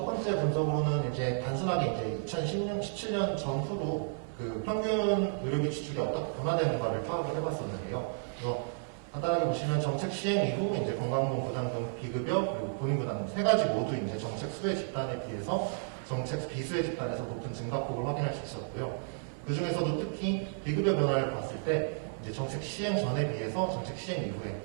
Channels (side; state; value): left; silent; 56 dB below the other